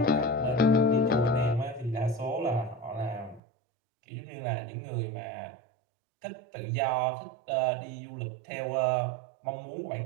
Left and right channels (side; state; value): left; drops out; at 3.4 s